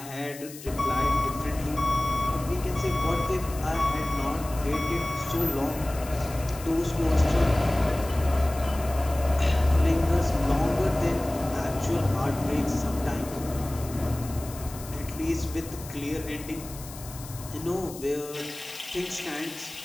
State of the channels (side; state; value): left; noise; hiss, 15 dB below the sound